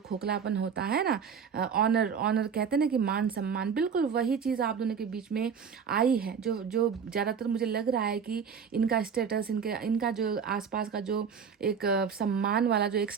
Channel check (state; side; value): quieter; left; 6.7 dB